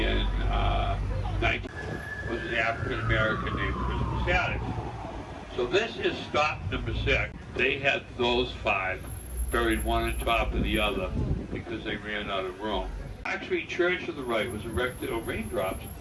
19 was an African American named Christmas Adams. So this is stop number 6. They had those 5 buried one on top of the other because they ran out of room. Actually, Church to the right was erected, raindrops.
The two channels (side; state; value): both; identical; correlation 1.00